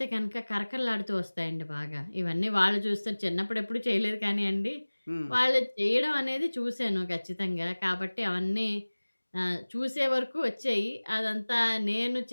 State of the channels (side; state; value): both; inverted; correlation -1.00